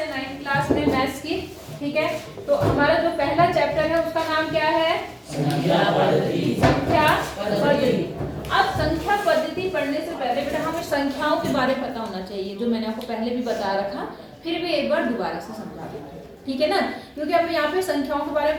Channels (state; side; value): identical; both; correlation 1.00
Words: 9th क्लास में मैथ्स की, ठीक है। तो हमारा जो पहला चैप्टर है उसका नाम क्या है? संख्या पद्धति। संख्या पद्धति। अब संख्या पद्धति पढ़ने से पहले बेटा हमें संख्याओं के बारे में पता होना चाहिए, जो मैंने आपको पहले भी बता रखा, फिर भी एक बार दोबारा से समझा देंगे, ठीक है ना। क्योंकि हमें यहाँ पे संख्याओं के बारे